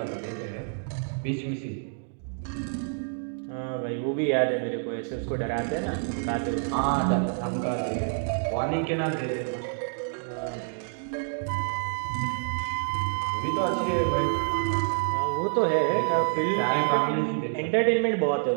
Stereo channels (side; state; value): left; silent; 60 dB below the other